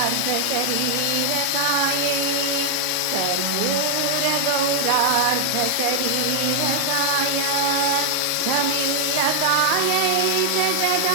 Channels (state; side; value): different; both; correlation 0.00